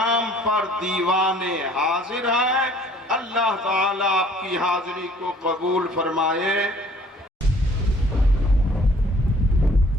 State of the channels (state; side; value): normal; both; correlation 0.56